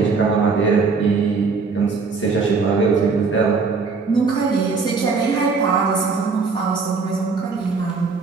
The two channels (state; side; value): quieter; left; 4.7 dB